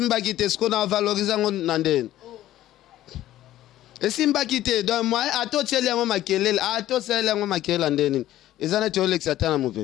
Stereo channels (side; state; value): right; quieter; 13.9 dB